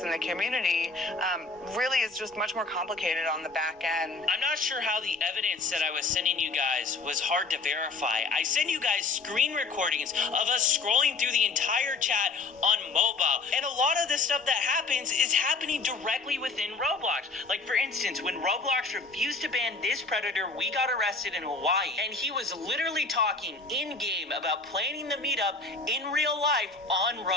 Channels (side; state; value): right; quieter; 3.8 dB